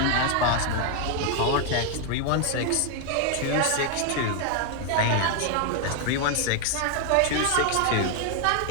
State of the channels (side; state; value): both; different; correlation 0.00